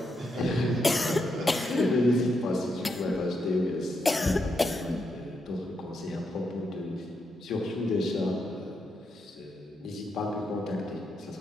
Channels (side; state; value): both; normal; correlation 0.82